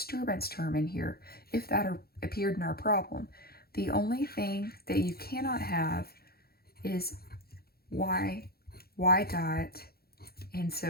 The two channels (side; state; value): right; late; 0.45 ms